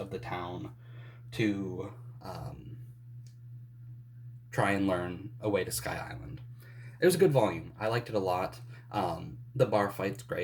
the town to try and learn a way to Sky Island. It was a good volume. I liked it a lot. The bar fight's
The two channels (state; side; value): identical; both; correlation 1.00